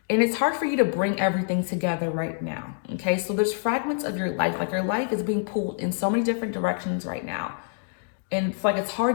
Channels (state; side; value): silent; right; digital silence